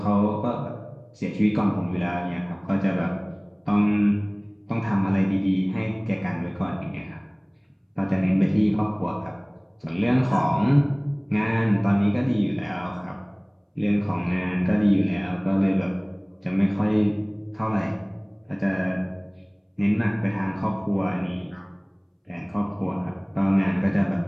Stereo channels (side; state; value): both; identical; correlation 1.00